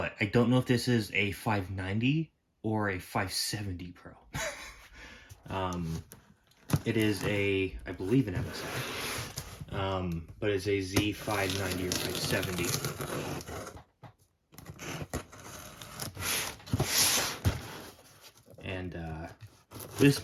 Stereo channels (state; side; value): identical; both; correlation 1.00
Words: I don't know if this is a 590 or a 570 Pro. It is I believe an MSI, but it's a Z590 or 570. And this